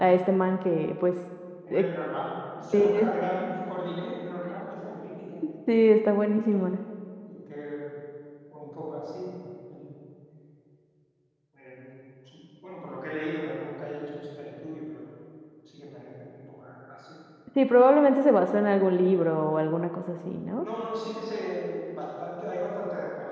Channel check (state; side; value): identical; both; correlation 1.00